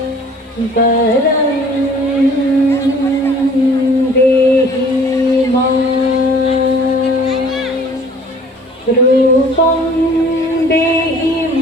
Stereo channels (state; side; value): normal; both; correlation 0.52